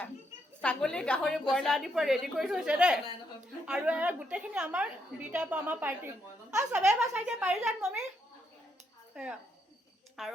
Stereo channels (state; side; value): normal; both; correlation 0.77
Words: ছাগলী গাহৰি ব্ৰইলাৰ আদিৰ পৰা ৰেডি কৰি থৈছে দেই আৰু গোটেইখিনি আমাৰ দুইটাৰ পৰা আমাৰ পাৰ্টি চবেই এবাৰ চাই দিয়ে পাৰি যান মমি এয়া